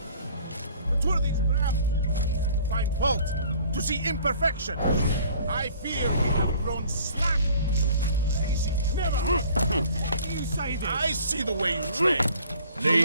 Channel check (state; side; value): inverted; both; correlation -0.52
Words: But were these perhaps to find fault, to see imperfection? I fear we have grown slack. Lazy. Never. You say this. I see the way you train. You